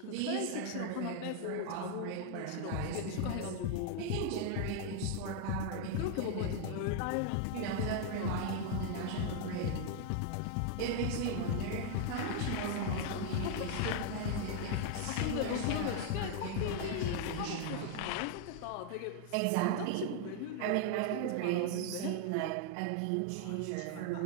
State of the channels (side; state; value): both; different; correlation 0.00